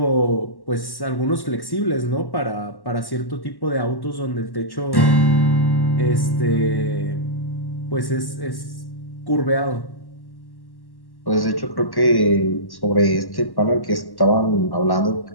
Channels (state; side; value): late; right; 1.1 ms